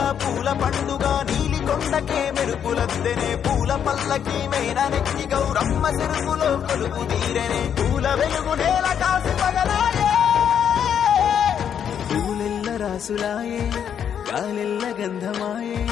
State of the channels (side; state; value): right; quieter; 8.5 dB